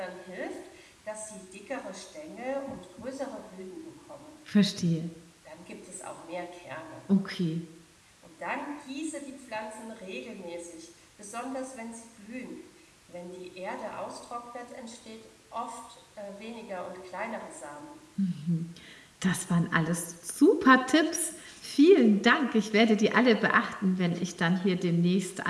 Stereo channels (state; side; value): identical; both; correlation 1.00